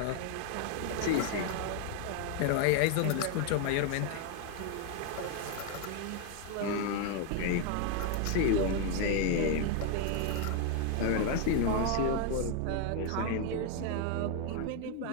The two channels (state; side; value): different; both; correlation 0.01